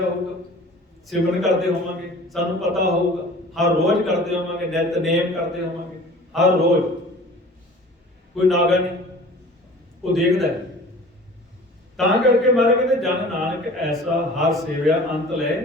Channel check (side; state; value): both; normal; correlation 0.44